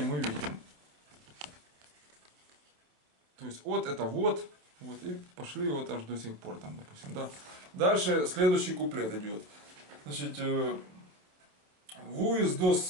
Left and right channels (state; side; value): late; left; 28 ms